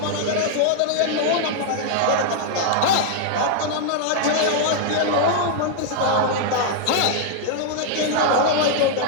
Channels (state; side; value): different; both; correlation 0.00